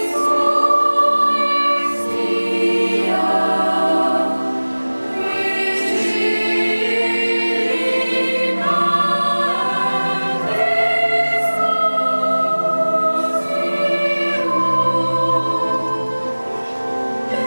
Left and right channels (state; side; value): inverted; both; correlation -1.00